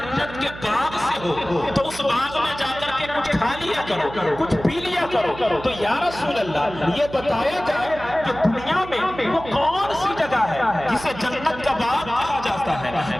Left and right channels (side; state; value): right; noise; hum, 14 dB below the sound